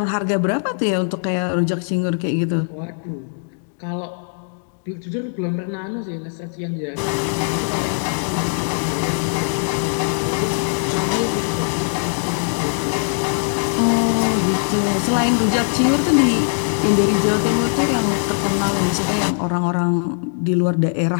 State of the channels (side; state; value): right; silent; digital silence